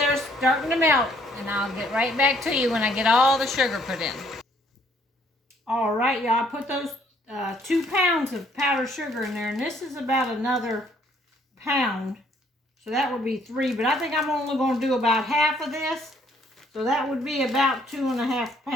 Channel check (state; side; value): normal; both; correlation 0.64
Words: starting to melt. And I'll get right back to you when I get all the sugar put in. All right, y'all, I put those 2 pounds of powdered sugar in there, and this is about another pound. So that would be 3, but I think I'm only going to do about half of this. So that would be about 2.5